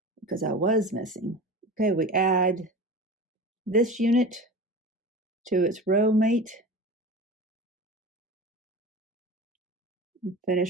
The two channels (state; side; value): normal; both; correlation 0.32